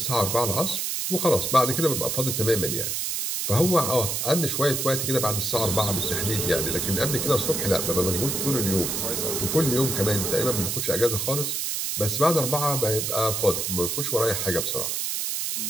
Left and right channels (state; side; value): noise; right; hiss, 1 dB below the sound